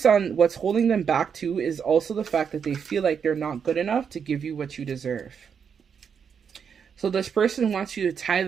on, what's holding them back too is also the fact that they feel like they're not good enough to give you what you deserve. So this person wants you to tie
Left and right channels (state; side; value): quieter; left; 7.0 dB